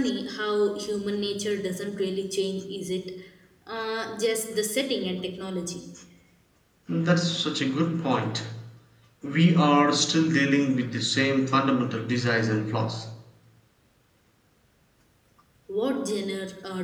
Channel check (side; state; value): both; identical; correlation 1.00